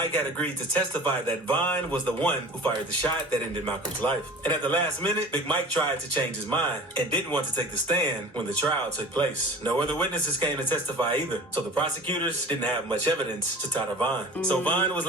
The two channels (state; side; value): normal; both; correlation 0.40